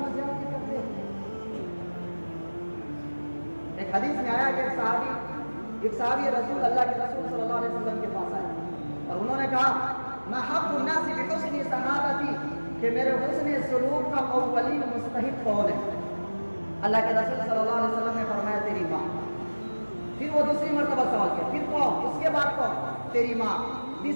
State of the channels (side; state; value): both; inverted; correlation -1.00